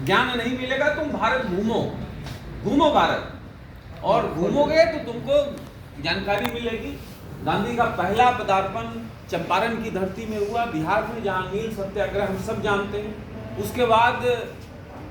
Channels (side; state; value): both; identical; correlation 1.00